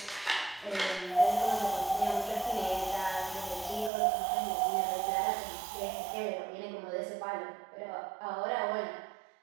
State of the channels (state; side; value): drops out; left; at 3.9 s